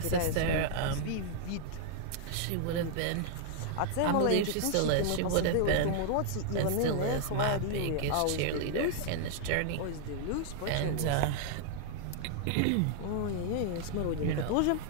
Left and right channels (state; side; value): different; both; correlation -0.01